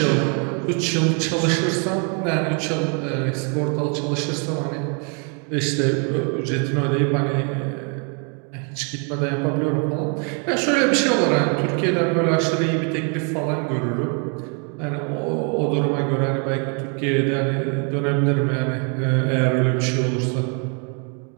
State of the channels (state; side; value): quieter; left; 37.6 dB